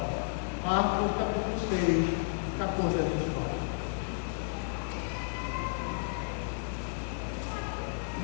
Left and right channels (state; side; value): silent; right; digital silence